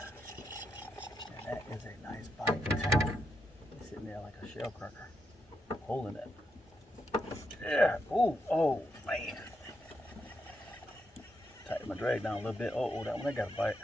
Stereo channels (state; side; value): normal; both; correlation 0.83